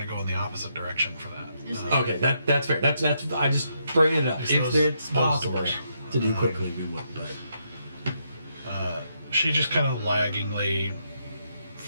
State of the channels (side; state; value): both; inverted; correlation -0.78